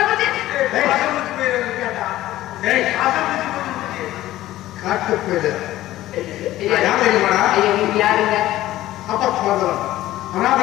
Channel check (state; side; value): quieter; right; 15.1 dB